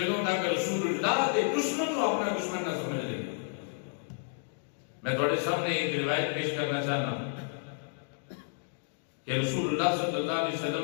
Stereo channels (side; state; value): right; silent; digital silence